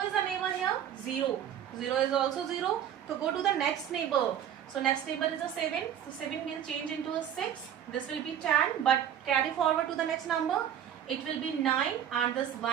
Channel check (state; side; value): quieter; left; 9.8 dB